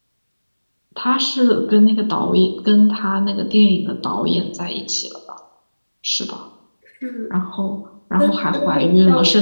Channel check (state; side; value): inverted; both; correlation -1.00